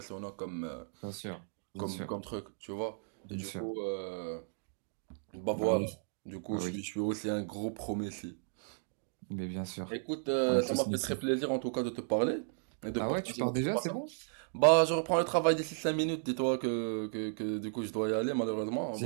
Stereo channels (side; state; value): left; silent; digital silence